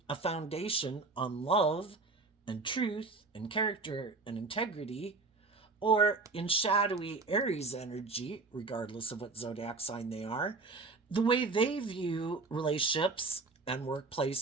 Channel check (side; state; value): left; quieter; 3.8 dB